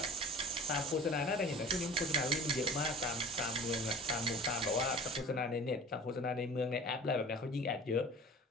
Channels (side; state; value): both; normal; correlation 0.42